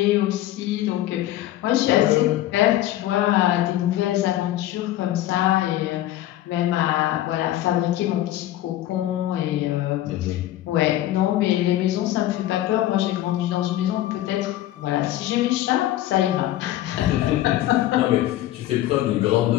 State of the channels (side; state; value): right; quieter; 14.1 dB